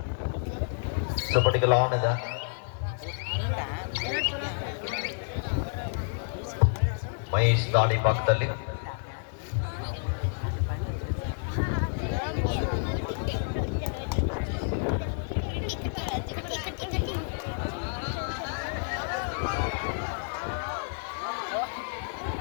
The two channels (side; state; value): right; silent; digital silence